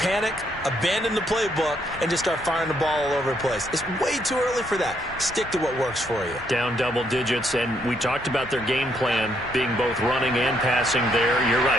panic, abandon the playbook, and just start firing the ball all over the place. It's way too early for that. Stick to what works for you. Down double digits, and we talked about their game plan being both running and passing there. You're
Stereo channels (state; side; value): normal; both; correlation 0.73